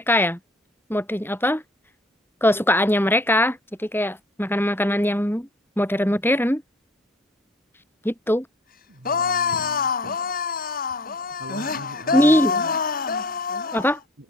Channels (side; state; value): both; normal; correlation 0.54